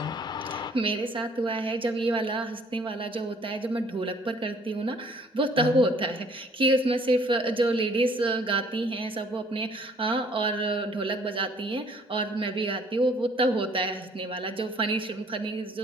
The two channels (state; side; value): normal; both; correlation 0.58